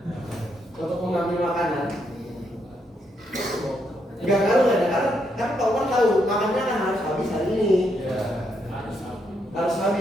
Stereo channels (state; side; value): normal; both; correlation 0.77